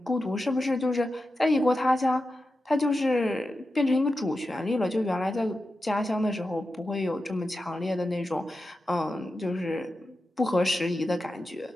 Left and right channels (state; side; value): normal; both; correlation 0.91